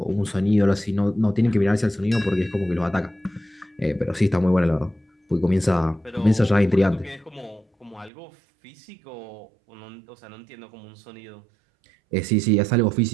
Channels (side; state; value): left; drops out; at 8.1 s